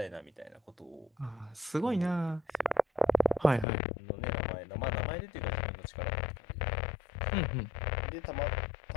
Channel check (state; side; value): drops out; right; at 3.7 s